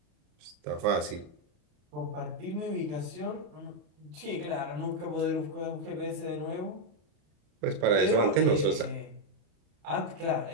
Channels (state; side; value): late; left; 34 ms